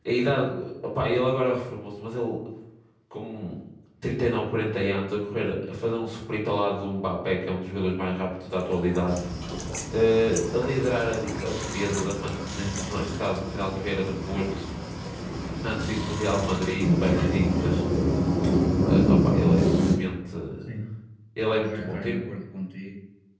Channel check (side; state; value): both; identical; correlation 1.00